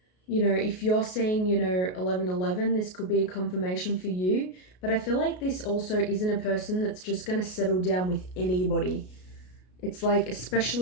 you know, if you're seeing, you know, 1111, this could be a confirmation for you. But I feel like this also isn't a person that's just going to settle down with anybody. It's like,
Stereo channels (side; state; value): right; late; 33 ms